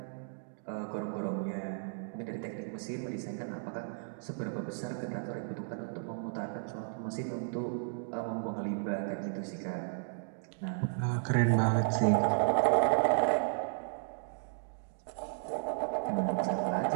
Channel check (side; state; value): left; silent; digital silence